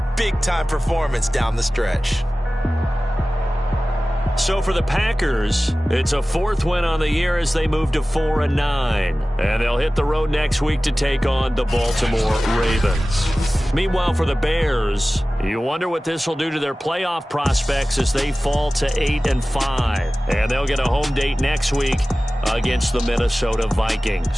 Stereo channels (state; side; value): normal; both; correlation 0.97